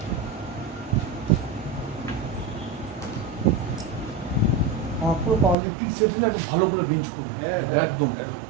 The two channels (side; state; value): left; drops out; at 5.6 s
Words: আমার পুরো পাওয়ার লিফটিং সেট হলে একদম ভালো করে বেঞ্চ করবে। একদম